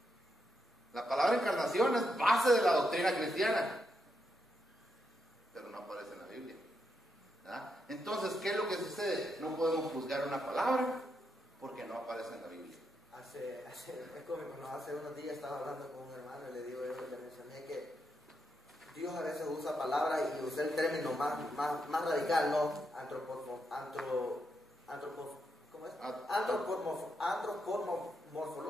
La palabra encarnación es base de la doctrina cristiana, pero no aparece en la Biblia. ¿Verdad? Entonces, ¿qué es lo que sucede? No podemos juzgar una palabra porque no aparece en la Biblia. Es cómico, ¿no? Hace unos días estaba hablando con un hermano y le mencioné que Dios a veces usa palabras y usé el término más radical, ¿no?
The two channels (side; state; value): both; normal; correlation 0.82